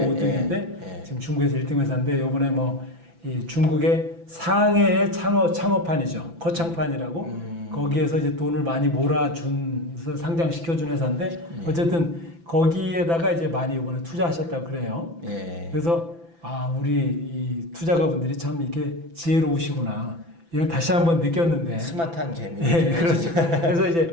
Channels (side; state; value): left; late; 5.9 ms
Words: 지금 중국에서 1등 회사인데 요번에 뭐 이 중국의 상해의 창업판이죠. 거창판이라고 거기에서 이제 돈을 많이 몰아준서 상장시켜준 회사인데 어쨌든 거기에다가 이제 많이 이번에 투자하셨다고 그래요. 예. 그래서 우리 이 투자가분들이 참 이렇게 지혜로우시구나. 이걸 다시 한번 느꼈는데. 스마트한 개미. 예, 그렇죠. 그래서